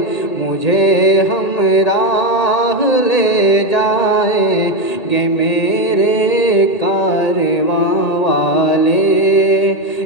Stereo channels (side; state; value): right; late; 1.8 ms